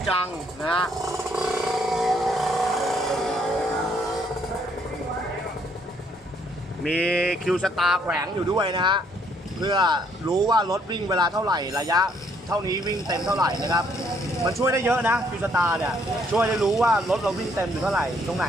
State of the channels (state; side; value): normal; both; correlation 0.68